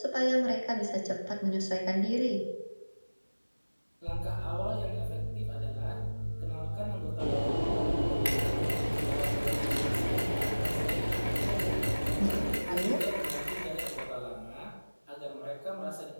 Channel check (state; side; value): inverted; both; correlation -1.00